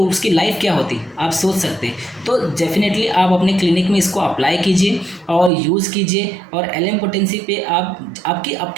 उसकी लाइफ क्या होती आप सोच सकते हैं। तो डेफिनेटली आप अपने क्लिनिक में इसको अप्लाई कीजिए और यूज़ कीजिए। और LM पोटेंसी पे आप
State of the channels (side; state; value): left; drops out; at 5.5 s